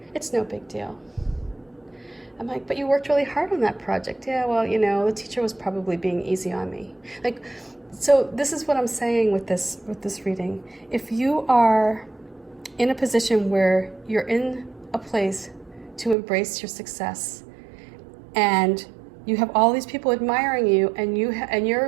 It's no big deal. I'm like, but you worked really hard on that project. Yeah, well, the teacher was probably being easy on me. Like, so this is what I'm saying with this reading. If you are in a position where you're in a place to embrace your success, and you have all these people admiring you, and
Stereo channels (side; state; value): left; drops out; at 16.2 s